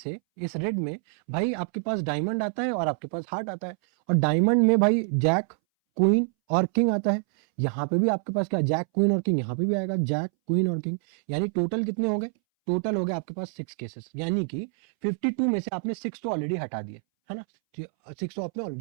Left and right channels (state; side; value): silent; left; 61 dB below the other